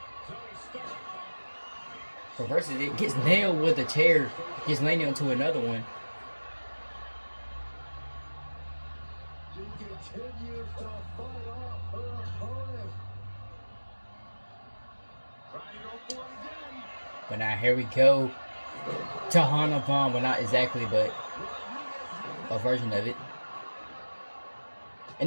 Reverses it. Gets nailed with a chair. Gets landed onto another one. She continues to fight off her opponent. But now here we go. Tahana Bomb. Well, not exactly, but a version of it.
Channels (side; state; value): both; inverted; correlation -1.00